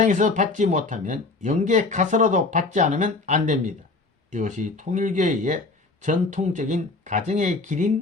받지 못하면 영계 가서라도 받지 않으면 안 됩니다. 이것이 통일교회의 전통적인 가정의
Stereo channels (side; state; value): right; quieter; 3.5 dB